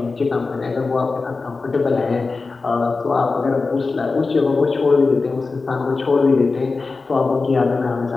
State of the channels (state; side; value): quieter; right; 4.0 dB